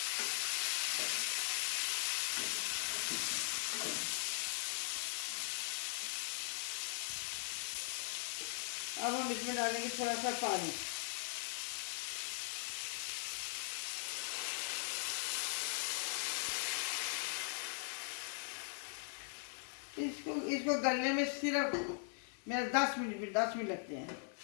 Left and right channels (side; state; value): right; silent; 51 dB below the other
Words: अब हम इसमें डालेंगे थोड़ा सा पानी। इसको इसको गलने में सिर्फ मेरे 10 मिनट लगते हैं।